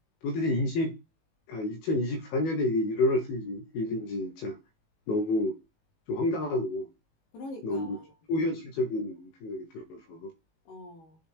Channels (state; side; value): late; right; 19 ms